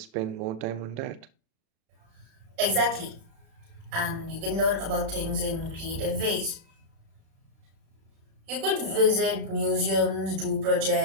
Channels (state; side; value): late; left; 36 ms